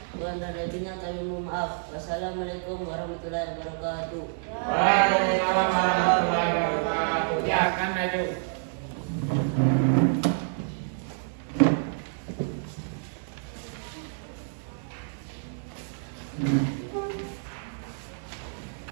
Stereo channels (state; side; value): silent; left; digital silence